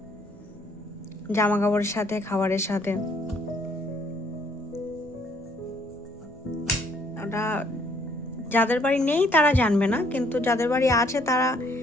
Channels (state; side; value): normal; both; correlation 0.65